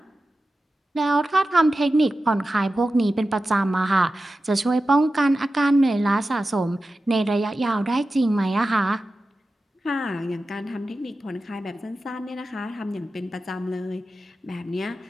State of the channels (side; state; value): both; normal; correlation 0.93